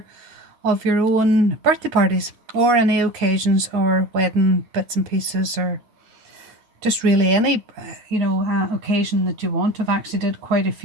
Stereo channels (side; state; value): left; late; 9.5 ms